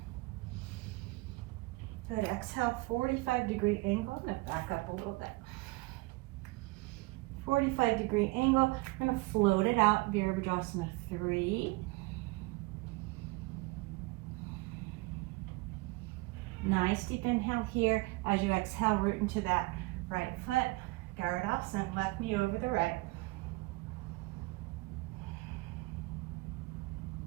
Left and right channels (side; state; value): left; quieter; 24.0 dB